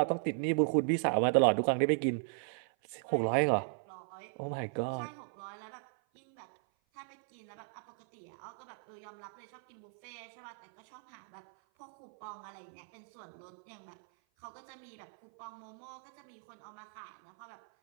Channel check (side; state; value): left; silent; 53 dB below the other